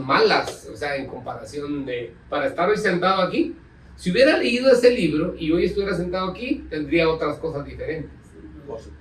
o sea, en comparación de, para estar hoy sentado aquí, si hubiera leído ese libro y hoy estuviera sentado aquí, tendría otras cosas diferentes, Por supuesto.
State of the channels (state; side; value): identical; both; correlation 1.00